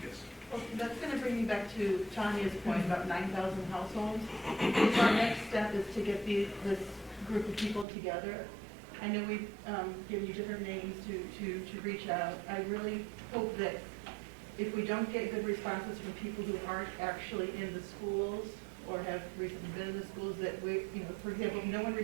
Yes. Well, that's going to bring me back to Tanya's point about 9,000 households. So our next step is to get this group of people together. I know we've given you different names to reach out. I really hope that if we don't get good responses from people who aren't actually in the schools or have recently been in the schools, that we, you know, for example, if no one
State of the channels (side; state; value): left; drops out; at 7.9 s